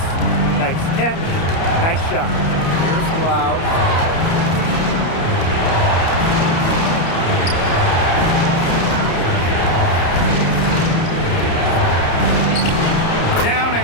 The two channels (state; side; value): late; right; 30 ms